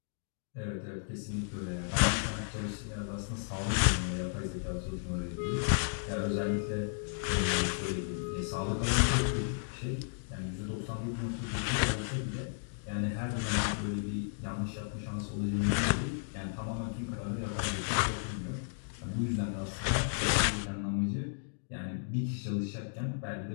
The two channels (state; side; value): silent; right; digital silence